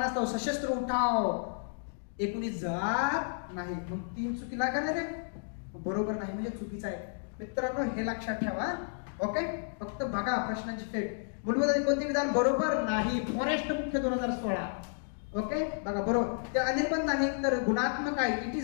सशस्त्र उठाव 19 जात नाही. मग 3 चुकी लागणार रे, बरोबर नाही म्हणजे चुकीचं आहे. मित्रांनो हे लक्षात ठेवा. ओके फक्त बघा प्रश्नांची फेट. मूलभूत कोणते विधान बरोबर नाही? फॉरेस्ट मुख्य 2016. ओके बघा बरोबर. ते अनिर्बंध नाही तर गुणात्मक आहे. It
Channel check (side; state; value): right; silent; digital silence